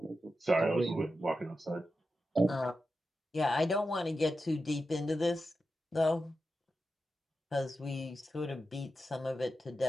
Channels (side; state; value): both; normal; correlation 0.90